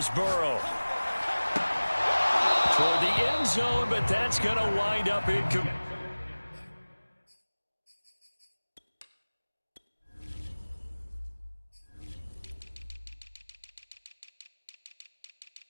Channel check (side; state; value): both; inverted; correlation -1.00